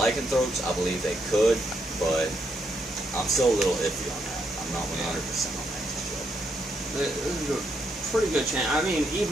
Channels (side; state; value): both; normal; correlation 0.78